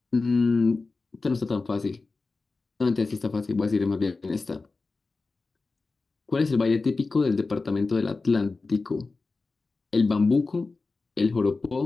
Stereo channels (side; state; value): right; quieter; 3.8 dB